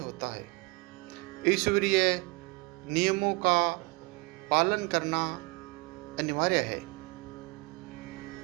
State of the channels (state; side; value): quieter; left; 27.0 dB